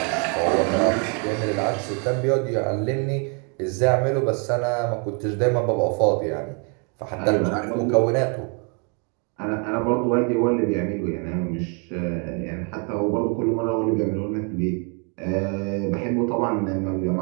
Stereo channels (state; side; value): quieter; left; 37.2 dB